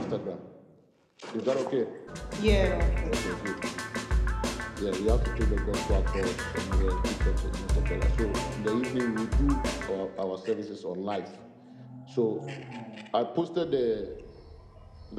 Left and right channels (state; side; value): identical; both; correlation 1.00